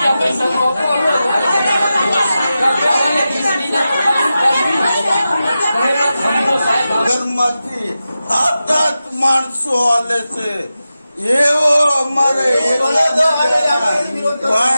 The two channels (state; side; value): inverted; both; correlation -0.92